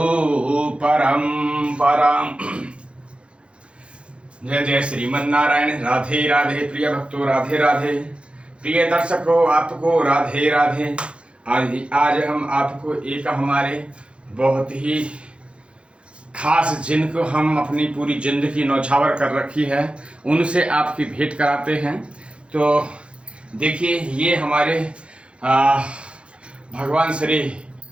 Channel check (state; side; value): late; left; 0.058 ms